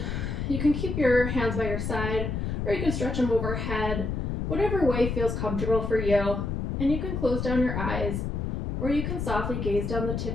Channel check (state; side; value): noise; left; rumble, 2 dB below the sound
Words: you can keep your hands by your side, or you can stretch them overhead, whatever way feels comfortable for you. And you can close down your eyes, or you can softly gaze down the tip